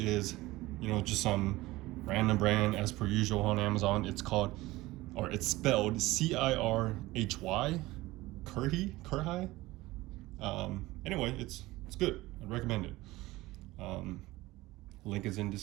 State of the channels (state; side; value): quieter; left; 19.0 dB